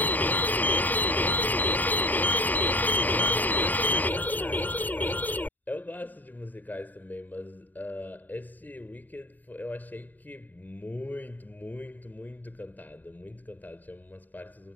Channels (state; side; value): late; right; 0.085 ms